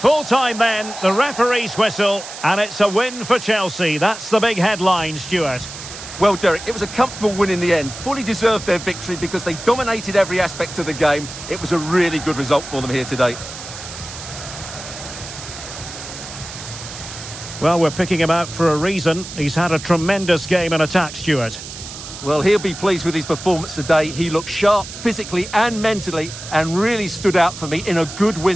then, the referee's whistle, and it's a win for Chelsea. That's the big headline, Stuart. Well, Derek, it was a comfortable win in the end. Fully deserved their victory because they dominated every aspect of the game. It was a really good result for them here today. Well, we're picking him out for a reason. He's had a tremendous game in attack, Stuart. Well, he'll be pleased with his performance today. He looked sharp physically and mentally and really stood out for me in a good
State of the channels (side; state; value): right; noise; hiss, 12 dB below the sound